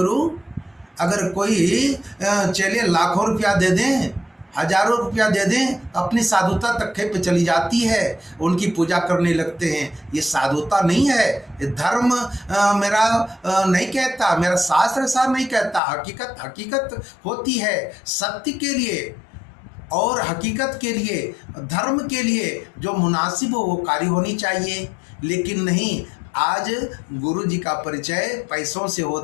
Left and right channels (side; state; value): right; drops out; at 15.8 s